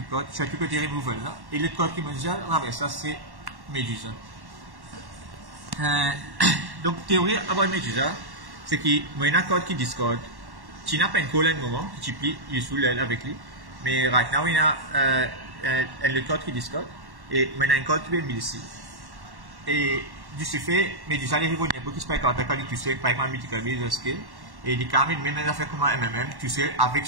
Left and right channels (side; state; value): left; late; 1.1 ms